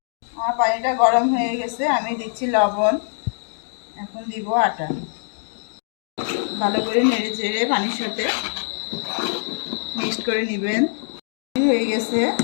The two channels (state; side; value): silent; right; digital silence